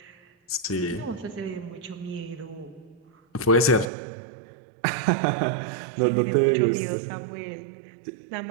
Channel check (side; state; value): left; drops out; at 3.9 s